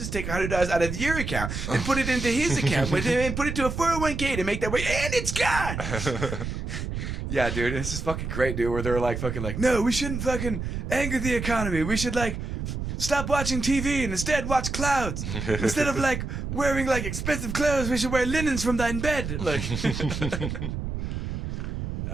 take $100 out of your account and put it into his account, and put it to a 401k to make that way, and it's gone." Yeah, dude, this is fucking great, dude. Where they're like, fucking like, "No, we shouldn't fucking anger the economy. We should like stop watching TV and instead watch clouds. Instead of like wearing like expensive clothes, we should wear linens from thine bed." Like, yeah,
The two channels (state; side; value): noise; right; rumble, 4 dB below the sound